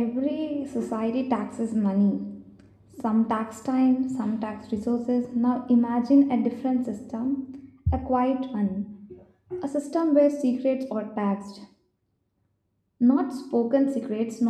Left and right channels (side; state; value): both; identical; correlation 1.00